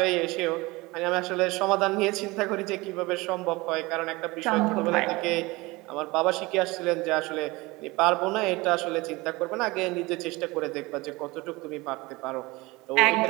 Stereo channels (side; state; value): left; quieter; 22.5 dB